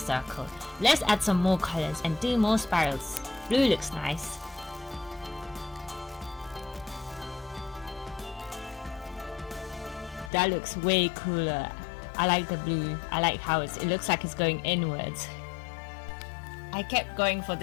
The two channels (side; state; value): right; drops out; at 10.3 s